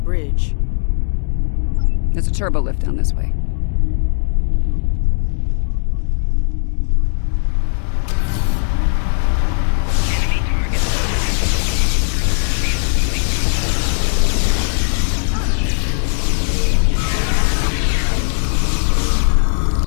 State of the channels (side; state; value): right; silent; 65 dB below the other